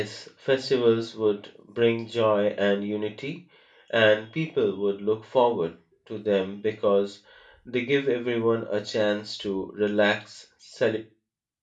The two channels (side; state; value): both; identical; correlation 1.00